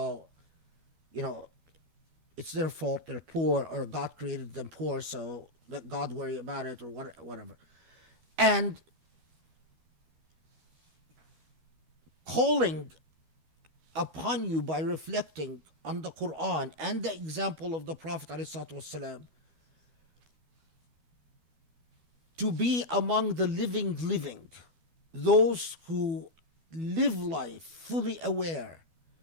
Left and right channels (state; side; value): late; left; 12 ms